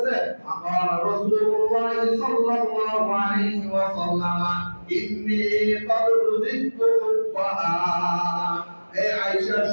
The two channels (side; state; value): both; inverted; correlation -1.00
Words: আকাল রাসূলুল্লাহ সাল্লাল্লাহু আলাইহি ওয়াসাল্লাম ইন্নী ক্বাদ রুজিকতু হুব্বাহা, এই আয়েশা